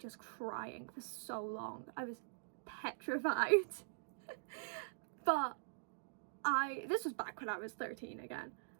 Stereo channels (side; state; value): left; silent; digital silence